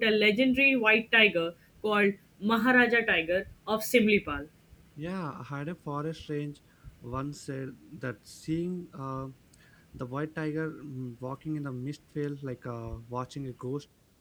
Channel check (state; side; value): identical; both; correlation 1.00